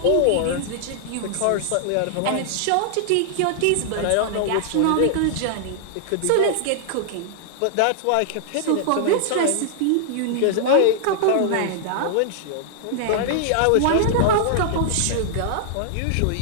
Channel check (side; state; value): both; different; correlation -0.01